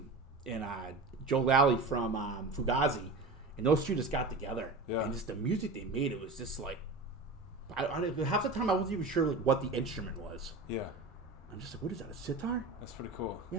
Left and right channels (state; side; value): quieter; left; 3.4 dB